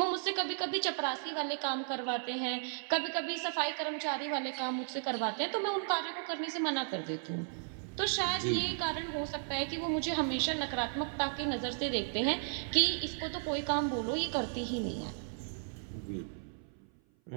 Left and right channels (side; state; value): left; silent; 54 dB below the other